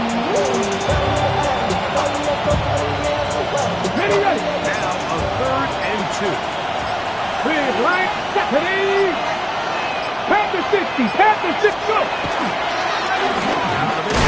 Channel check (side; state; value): both; identical; correlation 1.00